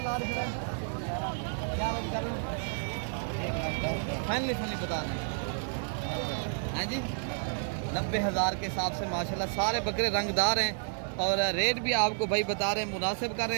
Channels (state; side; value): silent; left; digital silence